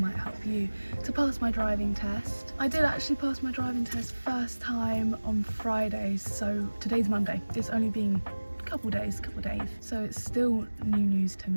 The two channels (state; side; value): inverted; both; correlation -1.00